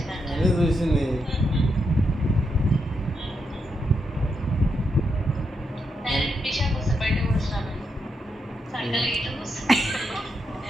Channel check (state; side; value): normal; both; correlation 0.82